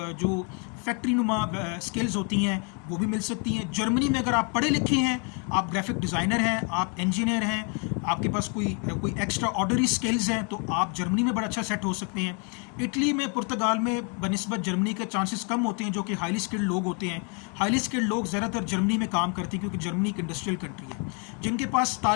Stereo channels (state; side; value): quieter; right; 36.8 dB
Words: फैक्ट्री नुमा स्किल्स होती हैं वो भी मिल सकती हैं। जर्मनी में अगर आप पढ़े लिखे हैं, आप ग्राफिक डिज़ाइनर हैं, आप इंजीनियर हैं, आपके पास कोई एक्स्ट्रा ऑर्डनरी स्किल्स हैं, तो आप जर्मनी में बड़ा अच्छा सेट हो सकते हैं। इटली में, पुर्तगाल में बनिस्बत जर्मनी के चांसेस कम होते हैं जो कि हाईली स्किल्ड लोग होते हैं। हाईली स्किल्ड लोग ज़्यादातर जर्मनी में काम करते हैं क्योंकि जर्मनी एक इंडस्ट्रियल कंट्री है। जिनके पास